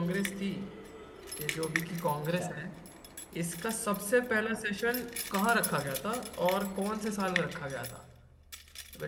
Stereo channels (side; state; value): both; identical; correlation 1.00